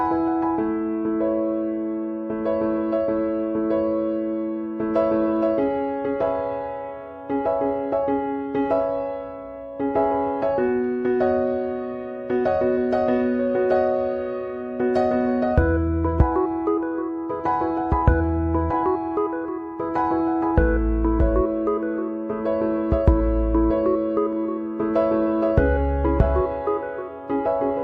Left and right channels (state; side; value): identical; both; correlation 1.00